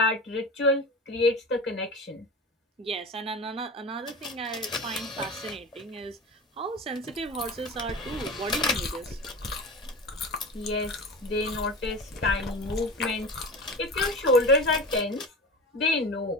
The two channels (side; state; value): both; normal; correlation 0.31